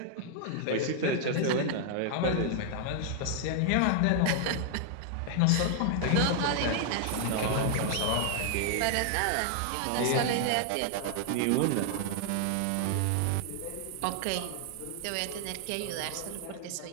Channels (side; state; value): both; different; correlation 0.00